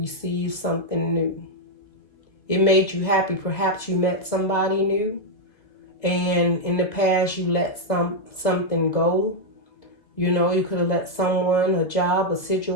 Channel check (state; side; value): late; right; 2.2 ms